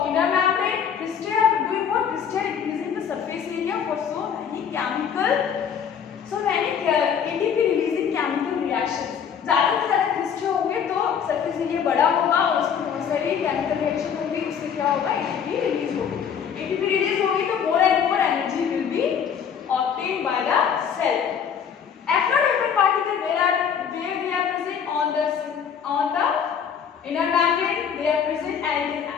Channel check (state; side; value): quieter; right; 7.7 dB